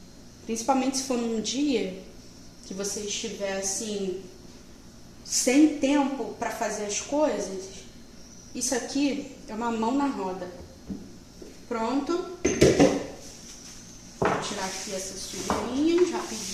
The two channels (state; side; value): identical; both; correlation 1.00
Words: Principalmente se for num dia que você estiver assim, sem tempo para fazer as coisas. Isso aqui é uma mão na roda. Pronto. Vou tirar aqui essas sujeirinhas